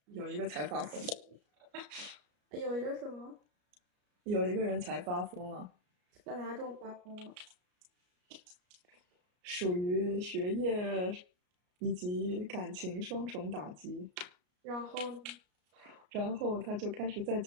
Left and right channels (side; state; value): left; late; 33 ms